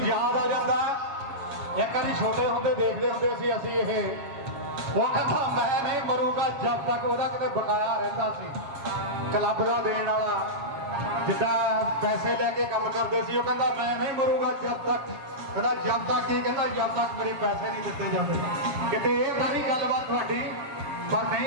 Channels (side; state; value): left; late; 7.2 ms